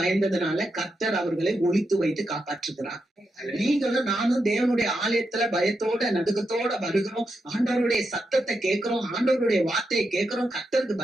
கர்த்தர் அவர்களை ஒளித்து வைத்து காப்பாற்றுகிறார். நீங்களும் நானும் தேவனுடைய ஆலயத்துல பயத்தோட நடுக்கத்தோட வருகிறோம், ஆண்டவருடைய சத்தத்தை கேட்கிறோம், ஆண்டவருடைய வார்த்தையை கேட்கிறோம். கர்த்தருக்கு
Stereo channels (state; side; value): normal; both; correlation 0.85